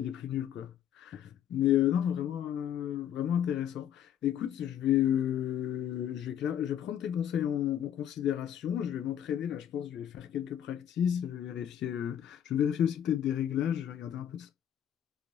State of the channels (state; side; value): quieter; right; 10.1 dB